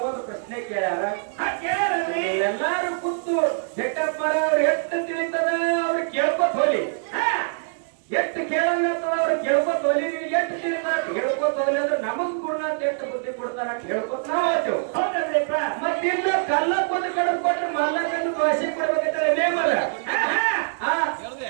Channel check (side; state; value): left; silent; 63 dB below the other